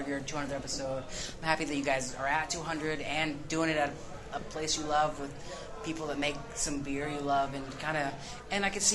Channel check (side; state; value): both; identical; correlation 1.00